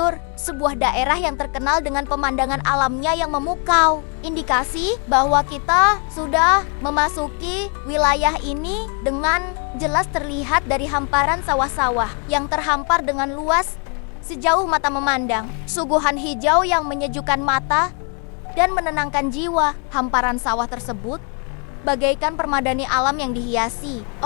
sebuah daerah yang terkenal dengan pemandangan alamnya yang memukau. Indikasi bahwa kita sudah memasuki wilayah ini dengan jelas terlihat dari hamparan sawah-sawah yang terhampar dengan luas sejauh mata memandang. Suguhan hijau yang menyejukkan mata dan menenangkan jiwa. Hamparan sawah tersebut bagaikan permadani alam yang dihiasi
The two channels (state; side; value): quieter; right; 37.5 dB